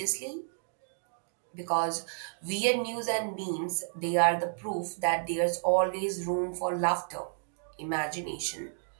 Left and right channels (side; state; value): left; silent; digital silence